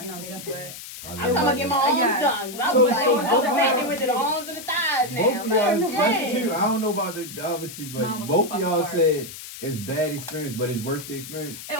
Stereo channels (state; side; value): noise; left; hiss, 12 dB below the sound